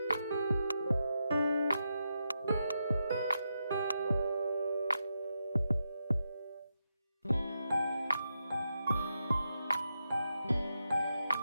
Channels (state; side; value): inverted; both; correlation -0.85